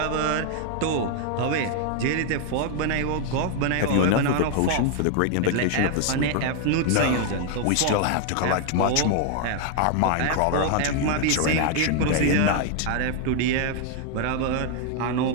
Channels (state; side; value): different; both; correlation 0.00